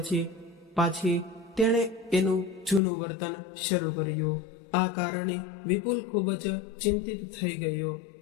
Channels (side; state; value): right; drops out; at 2.8 s